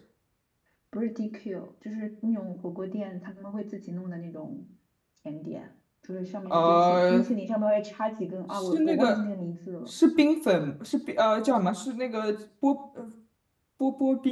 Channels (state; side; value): identical; both; correlation 1.00